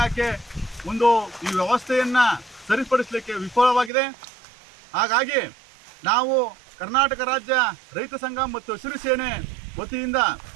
ಒಂದು ಈ ವ್ಯವಸ್ಥೆಯನ್ನ ಸರಿಪಡಿಸಲಿಕ್ಕೆ ವಿಫಲವಾಗಿದೆ. ಹಾಗಾಗಿ ನಾವು ಕರ್ನಾಟಕ ರಾಜ್ಯ ರೈತ ಸಂಘ ಮತ್ತು ಹಸಿರು ಸೇನೆ ವತಿಯಿಂದ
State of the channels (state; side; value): drops out; left; at 3.9 s